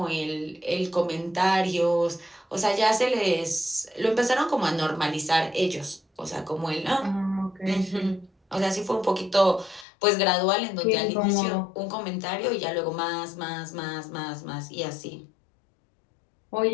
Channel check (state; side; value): drops out; right; at 9.9 s